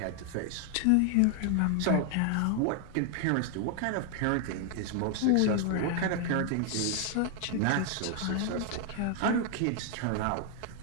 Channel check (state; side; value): different; both; correlation 0.00